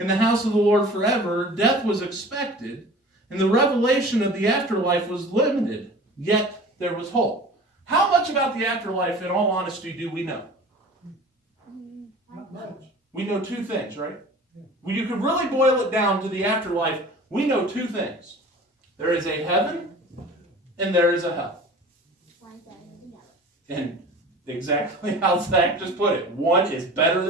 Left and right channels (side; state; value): both; normal; correlation 0.41